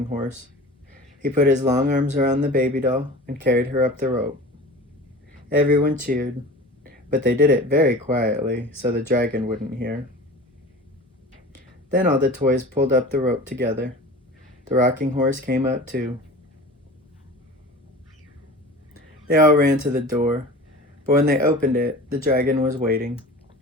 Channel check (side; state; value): both; normal; correlation 0.37